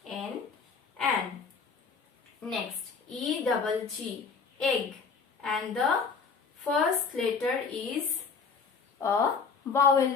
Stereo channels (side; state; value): right; quieter; 5.2 dB